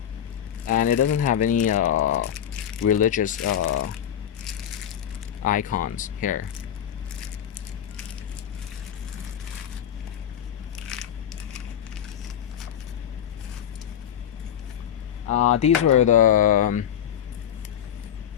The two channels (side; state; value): right; quieter; 9.8 dB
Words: and it doesn't have any religious icons here. These were the